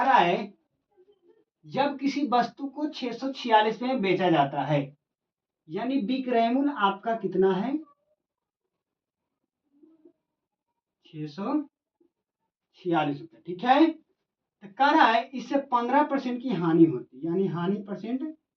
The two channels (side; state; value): both; identical; correlation 1.00